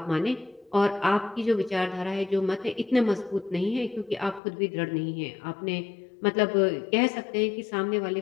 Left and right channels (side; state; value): right; drops out; at 4.4 s